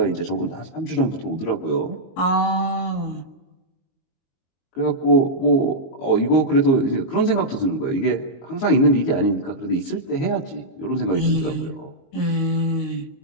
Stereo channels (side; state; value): right; late; 22 ms